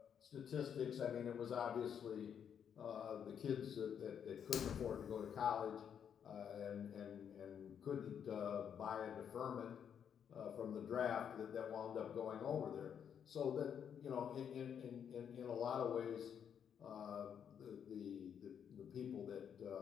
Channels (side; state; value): right; quieter; 8.2 dB